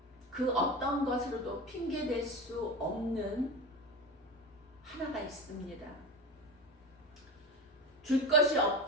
그 어떤 것으로도 핑계댈 수 없는 하나가 있습니다. 줄 것이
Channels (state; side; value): normal; both; correlation 0.26